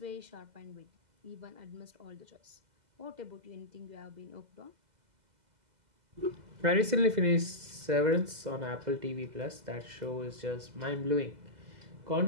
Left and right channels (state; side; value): late; left; 2.0 ms